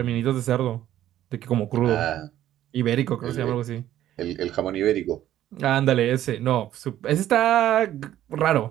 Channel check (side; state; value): left; quieter; 12.5 dB